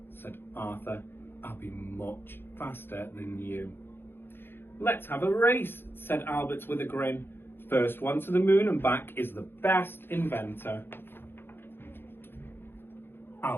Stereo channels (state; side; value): late; right; 0.10 ms